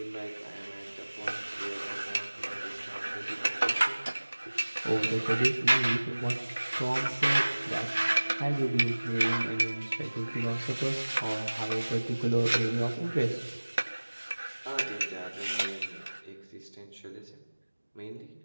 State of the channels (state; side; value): inverted; both; correlation -1.00